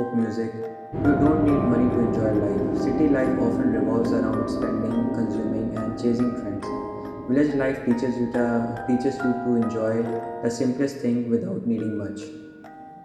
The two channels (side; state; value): both; identical; correlation 1.00